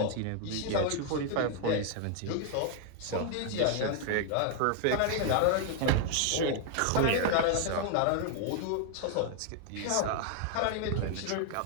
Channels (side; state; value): both; different; correlation 0.00